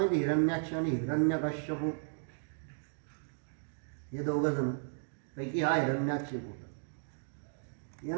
हिरण्याक्ष आणि हिरण्यकश्यप हे दोघं जण पैकी हा हिरण्याक्ष होता.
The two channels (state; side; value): silent; left; digital silence